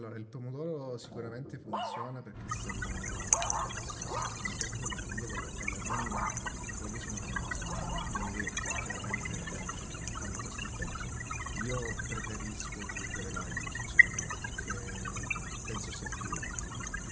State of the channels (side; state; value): both; identical; correlation 1.00